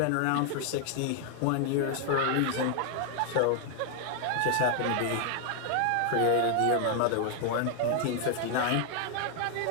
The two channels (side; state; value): both; different; correlation 0.00